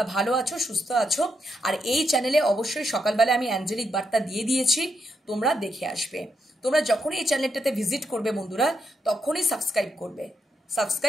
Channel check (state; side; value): normal; both; correlation 0.80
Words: ভালো আছো, সুস্থ আছো। আর এই চ্যানেলে অবশ্যই সকালবেলা আমি অ্যাঞ্জেলিক বার্তা দিয়ে দিয়েছি, তোমরা দেখে আসবে। তোমরা যখনই এই চ্যানেলটাতে ভিজিট করবে বন্ধুরা, তখনই সাবস্ক্রাইব করবে,